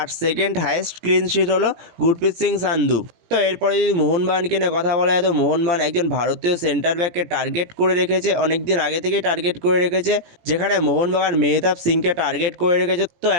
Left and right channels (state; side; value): late; left; 18 ms